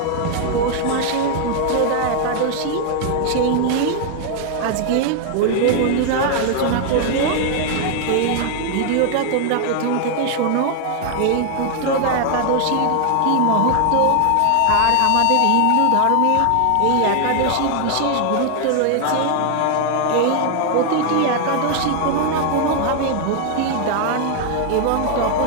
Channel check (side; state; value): both; different; correlation 0.00